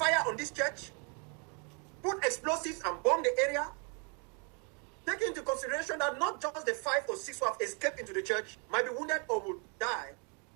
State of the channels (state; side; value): quieter; left; 36.1 dB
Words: on this church? Put explosives and bomb the area? Take into consideration that not just the 5 or 6 who have escaped into the church might be wounded or will die,